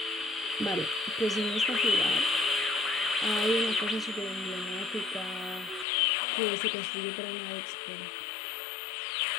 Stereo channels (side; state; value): right; drops out; at 5.9 s